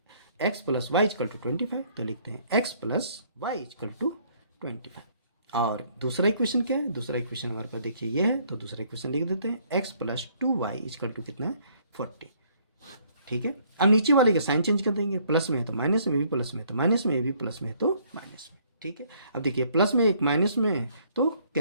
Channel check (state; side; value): inverted; both; correlation -0.64